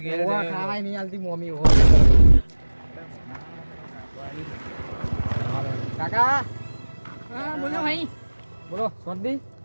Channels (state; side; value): inverted; both; correlation -1.00